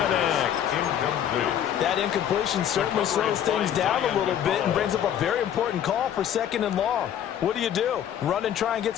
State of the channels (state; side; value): quieter; right; 10.0 dB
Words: Incomplete. That incompletion certainly slows things down a little bit and brings up a very important call for 2nd and long. What do? Run and try and get